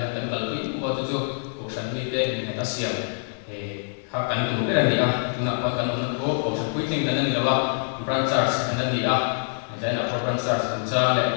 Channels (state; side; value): silent; right; digital silence